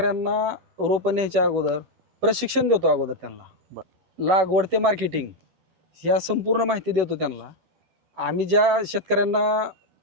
रोपं न्यायच्या अगोदर प्रशिक्षण देतो. अगोदर त्यांना लागवड ते मार्केटिंग या संपूर्ण माहिती देतो त्यांना. आम्ही ज्या शेतकऱ्यांना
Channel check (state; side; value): late; left; 12 ms